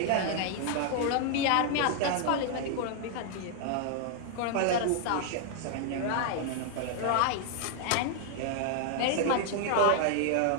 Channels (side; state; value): both; different; correlation 0.00